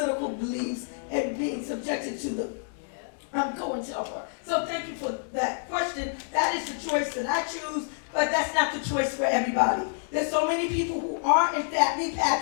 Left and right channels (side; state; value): right; silent; digital silence